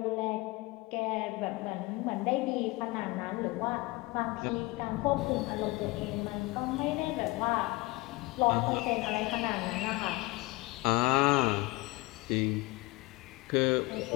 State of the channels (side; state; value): right; quieter; 22.7 dB